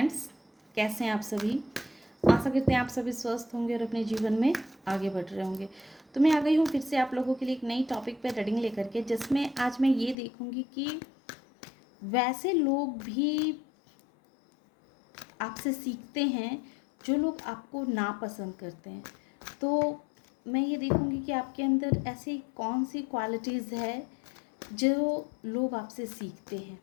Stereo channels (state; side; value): drops out; right; at 10.2 s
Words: कैसे हैं आप सभी। आशा करते हैं आप सभी स्वस्थ होंगे और अपने जीवन में आगे बढ़ रहे होंगे। तो मैं आ गई हूँ फिर से आप लोगों के लिए एक नई टॉपिक पे रीडिंग लेकर के, जिसमें आज मैं ये देखूँगी कि वैसे लोग भी आपसे सीखते हैं जो लोग आपको नापसंद करते हैं। तो मैं ये देखूँगी कि आपके अंदर ऐसी कौन सी क्वालिटीज़ है जो लोग आपसे सीखते हैं,